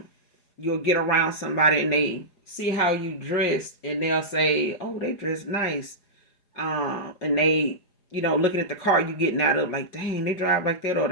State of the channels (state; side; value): late; right; 4.9 ms